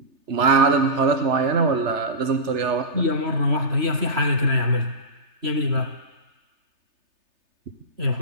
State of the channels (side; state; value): left; late; 3.3 ms